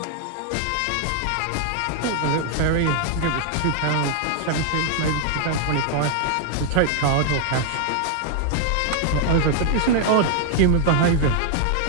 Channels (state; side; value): different; both; correlation 0.00